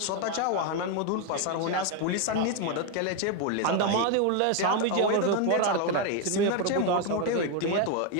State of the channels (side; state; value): both; different; correlation 0.01